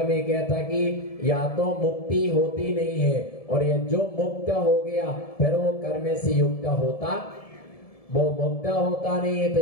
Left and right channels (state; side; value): late; right; 1.7 ms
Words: में कहता कि या तो मुक्ति होती नहीं है, और ये जो मुक्त हो गया फिर वो कर्म से युक्त होता, वो मुक्त होता नहीं है। तो